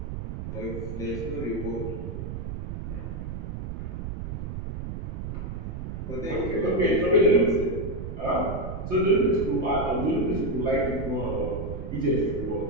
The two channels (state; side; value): noise; right; rumble, 6 dB below the sound